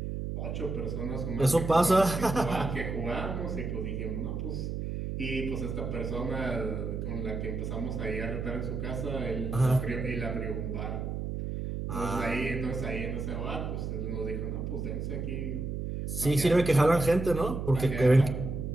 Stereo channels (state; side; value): noise; right; hum, 3 dB below the sound